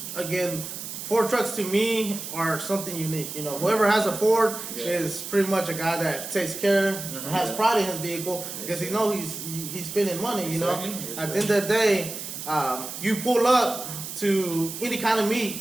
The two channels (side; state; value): right; noise; hiss, 8 dB below the sound